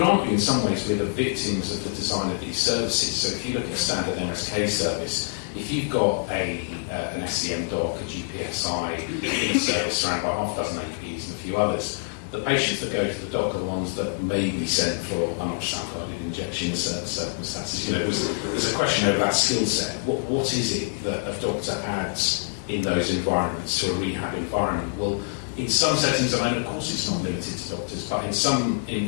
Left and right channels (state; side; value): silent; right; digital silence